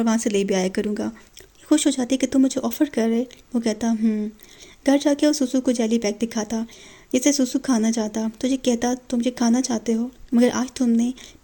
वहाँ से ले भी आया करूँगा। खुश हो जाती कि तुम मुझे ऑफ़र कर रहे। वो कहता घर जाके वो सुसु को जेली बैग दिखाता, जिसे सुसु खाना चाहता। तो ये कहता तुम ये खाना चाहते हो, मगर आज तुमने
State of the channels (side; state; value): both; identical; correlation 1.00